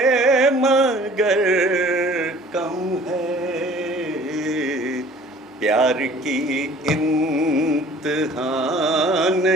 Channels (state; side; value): normal; both; correlation 0.50